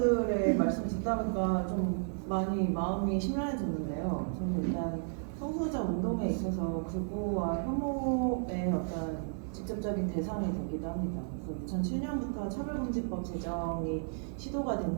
말씀 듣다 보니까 좀 많이 마음이 심란해졌는데요. 저는 일단 성소수자 운동에 있어서 극우와 혐오의 어떤 직접적인 대상이 되기도 합니다. 그래서 2007년부터 차별금지법 제정이 시도가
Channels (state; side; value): silent; left; digital silence